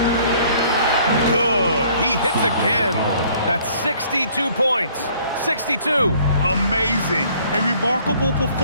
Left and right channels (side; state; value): both; inverted; correlation -0.59